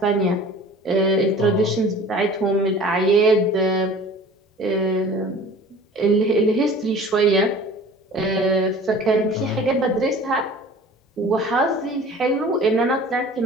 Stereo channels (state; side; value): normal; both; correlation 0.44